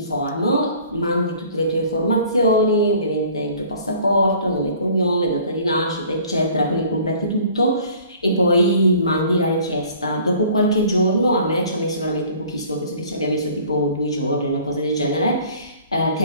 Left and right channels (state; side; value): inverted; both; correlation -0.51